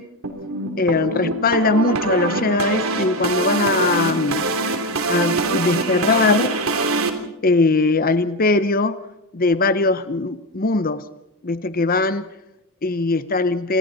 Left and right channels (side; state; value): both; normal; correlation 0.15